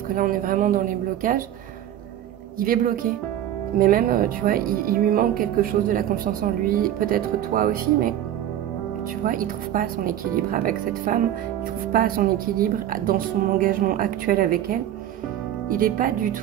que là on est vraiment dans les blocages. Il est bloqué, mais même, tu vois, il lui manque quelque chose de la confiance en lui, peut-être toi aussi, mais tu vois, il trouve pas son équilibre avec cette femme, il trouve pas son équilibre dans son engagement actuel avec elle. Il n'est pas du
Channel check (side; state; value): left; quieter; 11.7 dB